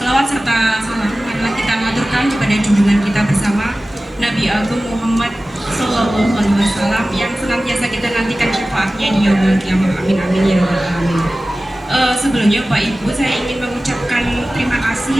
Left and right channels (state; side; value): normal; both; correlation 0.96